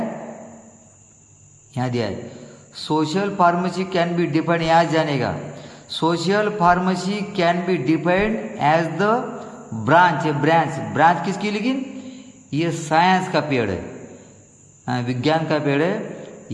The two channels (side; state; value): both; identical; correlation 1.00